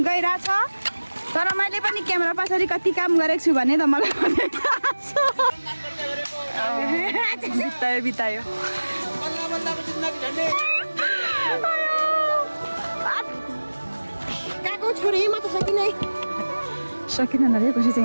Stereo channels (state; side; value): inverted; both; correlation -1.00